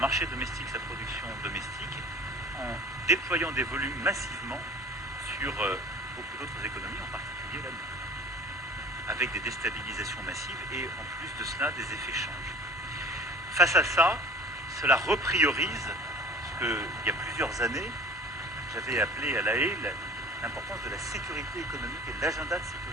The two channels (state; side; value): normal; both; correlation 0.45